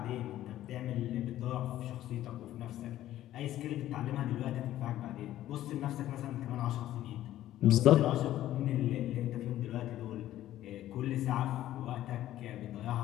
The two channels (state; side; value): quieter; right; 13.5 dB